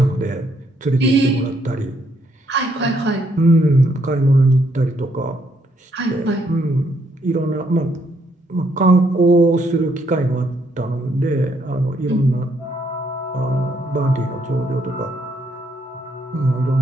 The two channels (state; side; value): normal; both; correlation 0.72